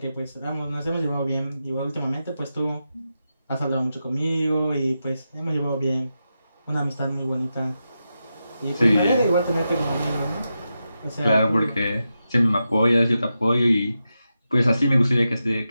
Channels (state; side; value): inverted; both; correlation -0.89